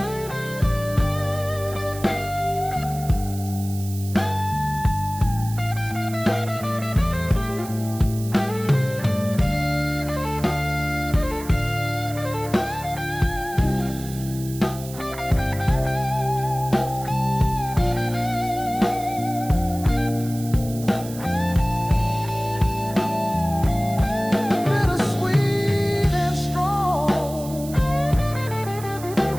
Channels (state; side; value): noise; right; hiss, 15 dB below the sound